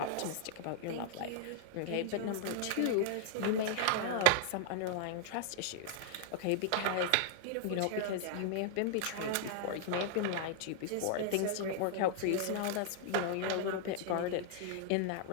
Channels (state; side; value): different; both; correlation -0.01